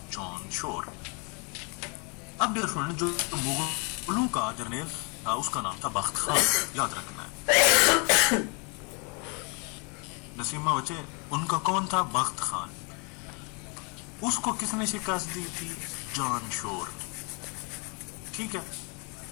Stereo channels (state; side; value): quieter; right; 33.7 dB